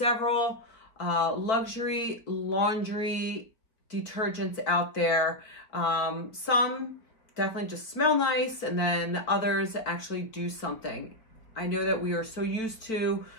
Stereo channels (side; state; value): right; late; 4.3 ms